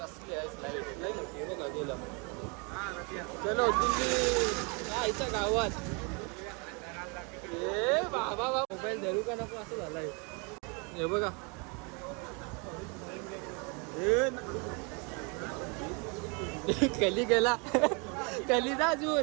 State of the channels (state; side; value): quieter; left; 32.8 dB